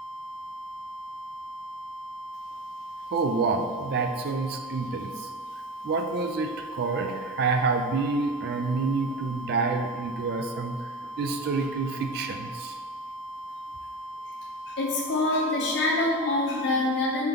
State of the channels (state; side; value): normal; both; correlation 0.25